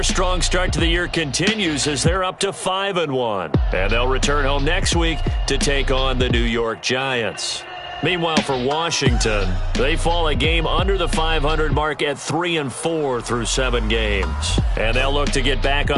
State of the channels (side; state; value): both; identical; correlation 1.00